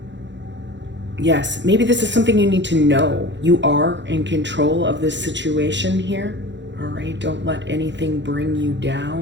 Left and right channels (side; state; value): left; late; 0.52 ms